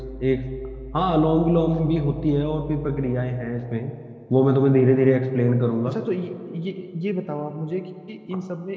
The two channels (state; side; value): identical; both; correlation 1.00